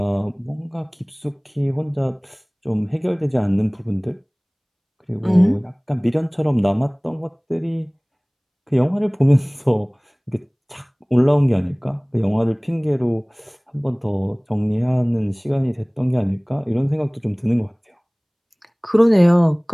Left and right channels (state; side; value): identical; both; correlation 1.00